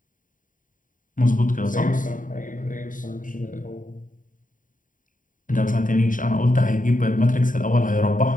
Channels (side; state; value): right; late; 0.39 ms